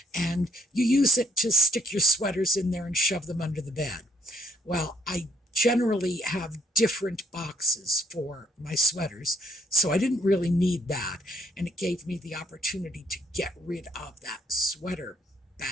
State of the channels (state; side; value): normal; both; correlation 0.67